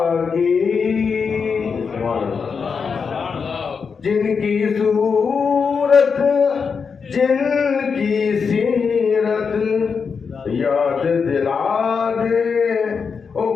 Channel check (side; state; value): right; quieter; 5.7 dB